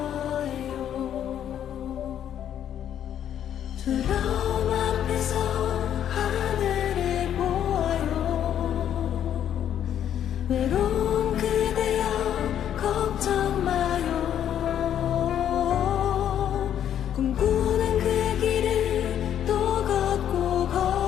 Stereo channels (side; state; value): right; quieter; 10.0 dB